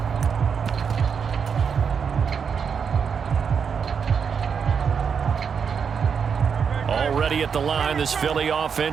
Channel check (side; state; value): left; quieter; 6.6 dB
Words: Already at the line, this Philly